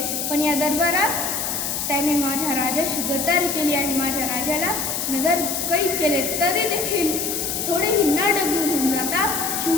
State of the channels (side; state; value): left; noise; hiss, 2 dB below the sound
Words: पण या दरबारात त्याने माझ्या राजाशी गद्दारी केली आणि माझ्या राजाला नजर कैद केले. तरी देखील थोडेही न डगमगून जाता